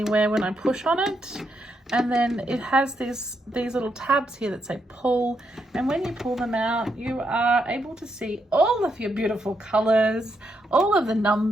when I push on it. And then it has these little tabs here that say pull, and when you pull them out, you are able to see all of your beautiful colors, all of the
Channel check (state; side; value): normal; both; correlation 0.80